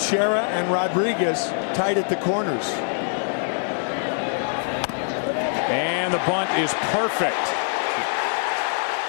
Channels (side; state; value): right; silent; 63 dB below the other